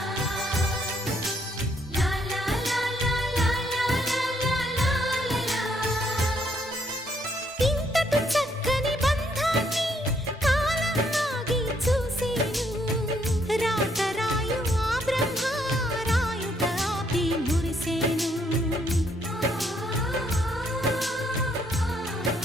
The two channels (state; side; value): normal; both; correlation 0.71